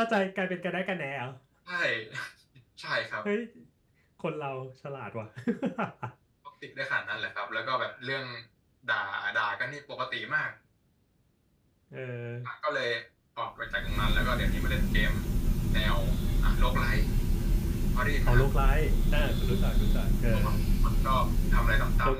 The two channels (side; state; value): both; identical; correlation 1.00